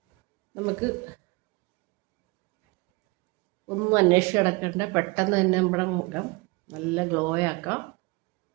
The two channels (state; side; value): quieter; left; 26.2 dB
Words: നമുക്ക് ഒന്നും അന്വേഷിച്ച് കിടക്കേണ്ട, പെട്ടെന്ന് തന്നെ നമ്മുടെ മുഖം നല്ല ഗ്ലോ ആക്കാം.